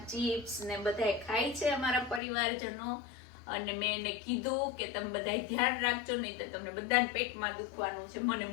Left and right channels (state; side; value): drops out; right; at 2.2 s